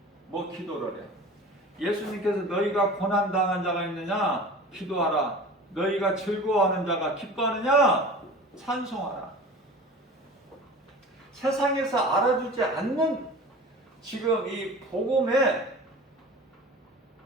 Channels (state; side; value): normal; both; correlation 0.38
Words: 뭐 기도를 해. 예수님께서 너희가 고난당한 자가 있느냐 기도하라. 너희가 즐거워하는 자가 기뻐하느냐 찬송하라. 세상에서 알아주지 않는 지금 이 복음